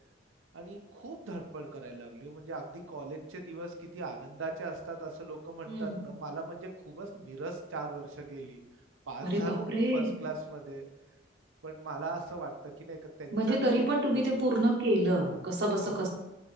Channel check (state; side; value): normal; both; correlation 0.48